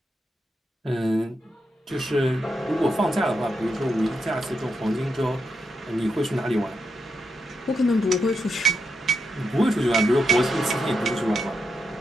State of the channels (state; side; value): normal; both; correlation 0.84